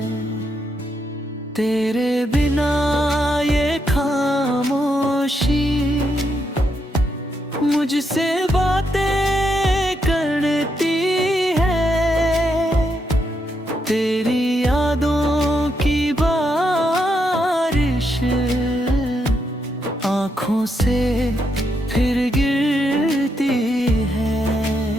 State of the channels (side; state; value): both; normal; correlation 0.80